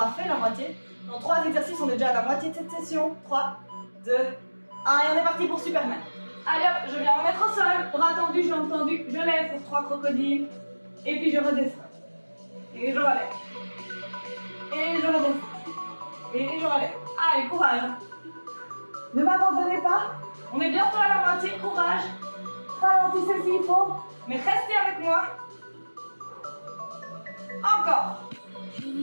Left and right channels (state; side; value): inverted; both; correlation -1.00